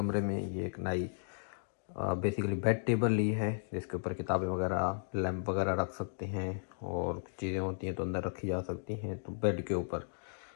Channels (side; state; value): right; silent; digital silence